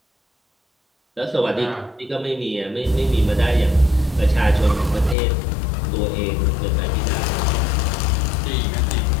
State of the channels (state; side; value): drops out; right; at 5.2 s